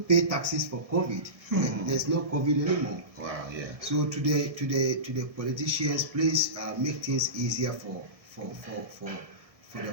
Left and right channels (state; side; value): late; left; 1.7 ms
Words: taxes for COVID. There's no COVID anymore. Wow. Yeah. So to the politicians, please make things easier for